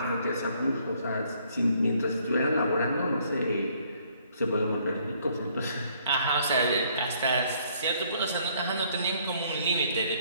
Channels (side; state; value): both; inverted; correlation -0.64